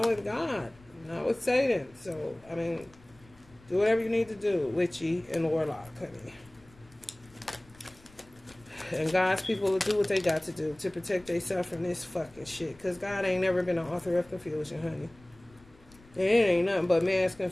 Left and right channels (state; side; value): noise; left; rumble, 26 dB below the sound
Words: with God, not with Satan. So, I mean, do whatever you need to do, witchy and warlock, honey. And God's people will do what they got to do to protect themselves from this fucking shit. Because God ain't never been an author of confusion, honey. And it ain't nothing but mass